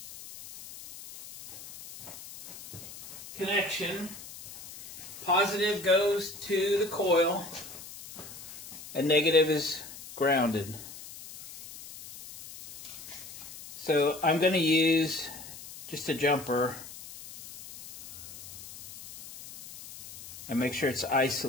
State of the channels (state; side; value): noise; left; hiss, 15 dB below the sound